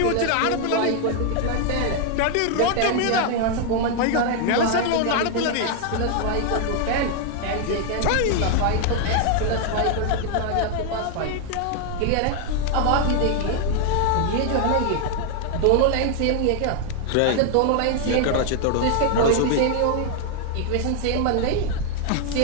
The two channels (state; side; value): different; both; correlation 0.00